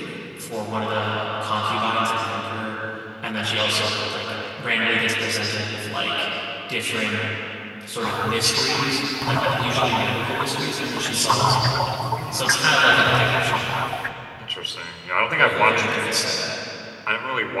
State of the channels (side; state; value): both; identical; correlation 1.00